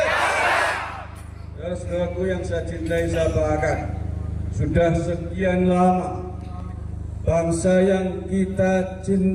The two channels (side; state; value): both; identical; correlation 1.00